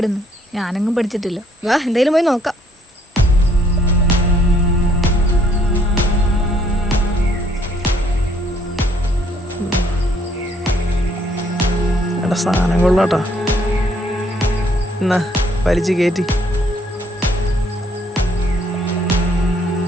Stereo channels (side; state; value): both; normal; correlation 0.66